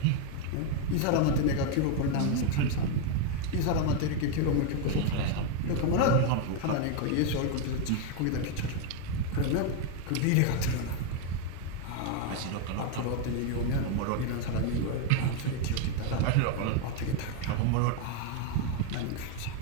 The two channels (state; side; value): different; both; correlation 0.01